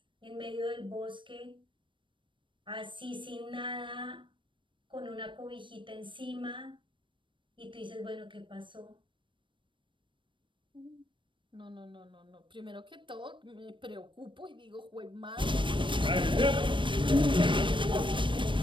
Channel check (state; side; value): late; left; 0.24 ms